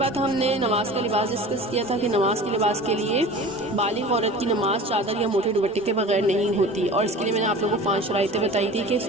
ہم نے نماز کا لباس ڈسکس کیا تھا کہ نماز کے لباس کے لیے بالغ عورت کی نماز چادر یا موٹے دوپٹے کے بغیر نہیں ہوتی، اور اس کے لیے میں نے آپ لوگوں کو 5 شرائطیں بتائی تھی کہ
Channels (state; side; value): normal; both; correlation 0.38